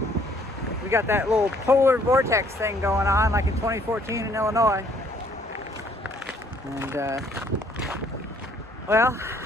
We got that little polar vortex thing going on like in 2014 in Illinois. And well,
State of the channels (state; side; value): normal; both; correlation 0.63